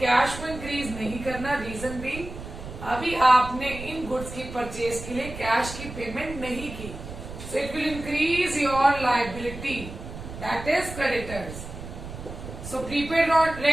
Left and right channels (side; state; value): right; noise; rumble, 11 dB below the sound